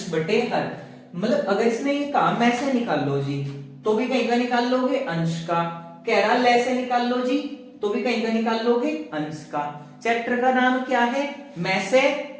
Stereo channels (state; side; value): identical; both; correlation 1.00